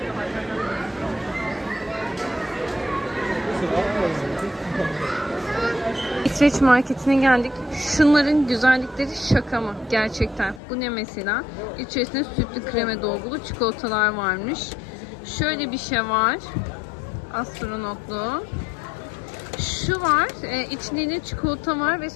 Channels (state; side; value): drops out; right; at 10.6 s